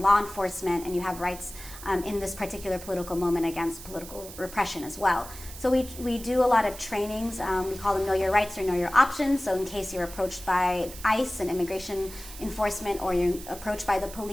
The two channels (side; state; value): right; noise; hiss, 14 dB below the sound